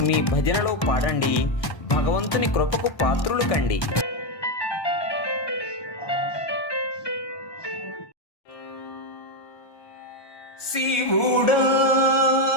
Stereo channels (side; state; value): right; late; 1.2 ms